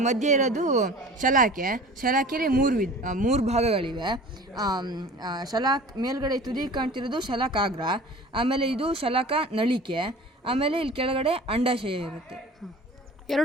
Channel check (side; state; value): both; normal; correlation 0.41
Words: ಮಧ್ಯೆ ಇರೋದು ಶಲಾಕೆಯಲ್ಲಿ 3 ಭಾಗಗಳಿವೆ. ಮೇಲ್ಗಡೆ ತುದಿ ಕಾಣ್ತಿರೋದು ಶಲಾಕಾಗ್ರ, ಆಮೇಲೆ ಇದು ಶಲಾಕ ನಳಿಕೆ, ಆಮೇಲೆ ಇಲ್ಲಿ ಕೆಳಗಡೆ ಅಂಡಾಶಯ ಇರುತ್ತೆ.